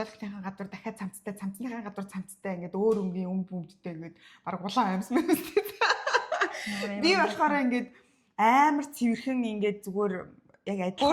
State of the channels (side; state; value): both; identical; correlation 1.00